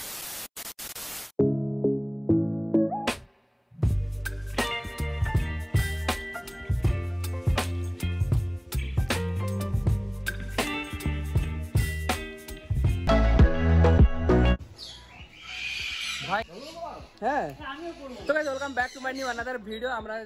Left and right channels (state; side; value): identical; both; correlation 1.00